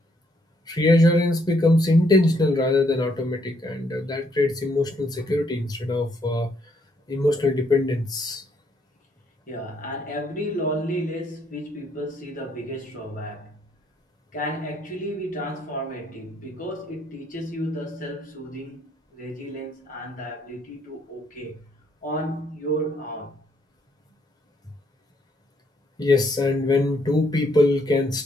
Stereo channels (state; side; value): normal; both; correlation 0.71